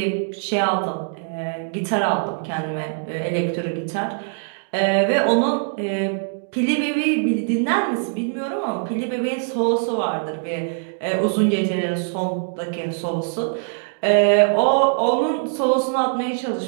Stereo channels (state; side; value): silent; left; digital silence